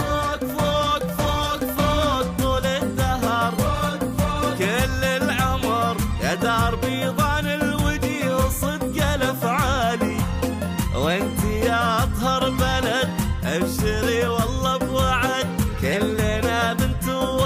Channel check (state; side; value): identical; both; correlation 1.00